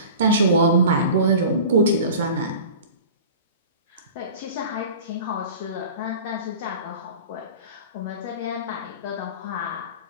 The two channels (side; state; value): both; inverted; correlation -0.38